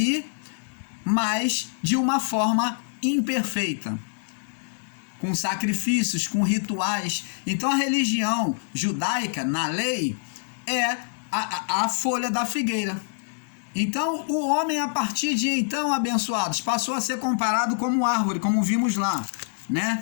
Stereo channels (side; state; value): right; silent; 61 dB below the other